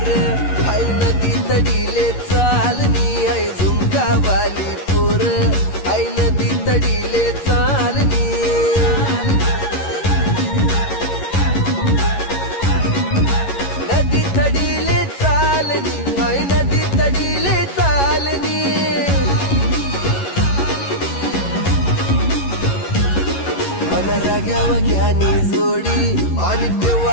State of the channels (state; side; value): late; right; 11 ms